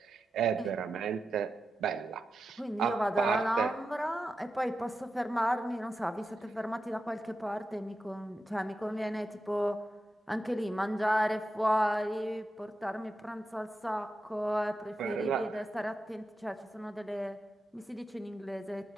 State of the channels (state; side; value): normal; both; correlation 0.90